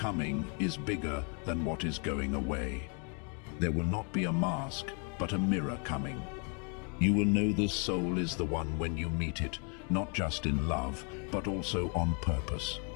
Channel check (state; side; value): quieter; right; 37.7 dB